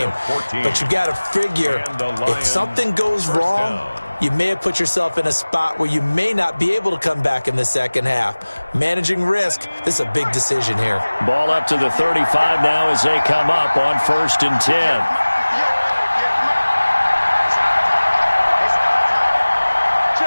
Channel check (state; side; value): inverted; both; correlation -1.00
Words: But you've got to figure if something goes wrong, you may have put yourself in a spot where you may not be able to come back in the second half. Managing risk, this is a big decision here. Ball up to the 35 now as they come up on 1st and 10.